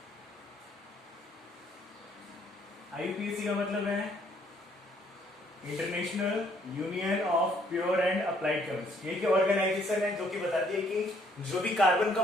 IUPAC का मतलब है international union of pure and applied chemist. ये ऑर्गेनाइजेशन है जो कि बताती है कि जो भी कार्बन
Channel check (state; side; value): normal; both; correlation 0.66